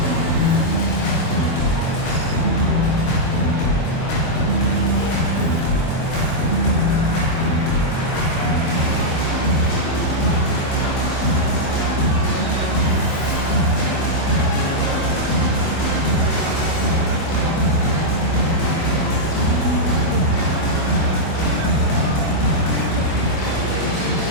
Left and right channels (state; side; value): late; right; 24 ms